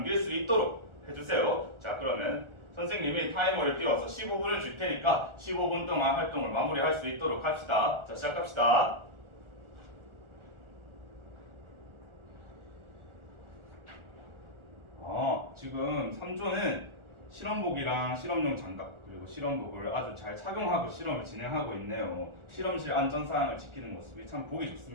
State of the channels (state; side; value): late; left; 1.4 ms